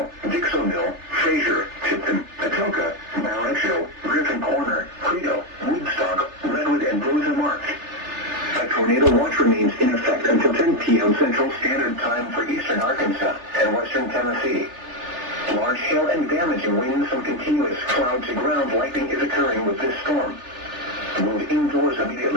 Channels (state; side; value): late; left; 3.3 ms